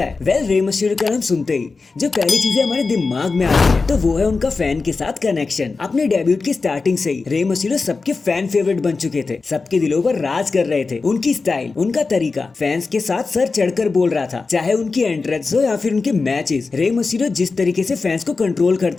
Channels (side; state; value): right; quieter; 4.2 dB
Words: है। वेल, रे मिस्टीरियो का नाम सुनते ही जो पहली चीजें हमारे दिमाग में आती है तो वो है उनका फैन के साथ कनेक्शन। अपने डेब्यूट की स्टार्टिंग से ही रे मिस्टीरियो सबके फैन फेवरेट बन चुके थे, सबके दिलों पर राज कर रहे थे। उनकी स्टाइल, उनका तरीका फैंस के साथ सर चढ़कर बोल रहा था, चाहे उनकी एंट्रेंस हो या फिर उनके मैचेस। रे मिस्टीरियो जिस तरीके से फैंस को कंट्रोल